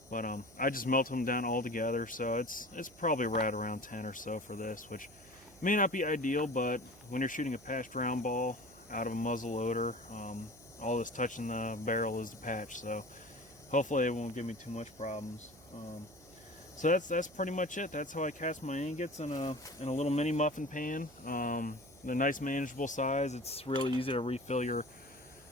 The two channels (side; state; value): right; noise; hum, 25 dB below the sound